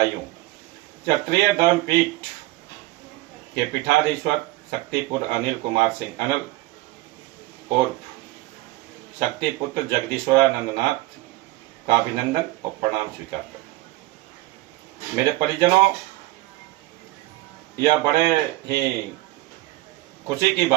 क्षत्रिय धर्मपीठ के पीठाधीश्वर शक्तिपुत्र अनिल कुमार सिंह अनिल और शक्तिपुत्र जगदीश्वरानंद नाथ का अभिनंदन और प्रणाम स्वीकार करें। मेरे परिजनों, यह बड़े ही खुशी की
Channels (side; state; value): left; quieter; 19.0 dB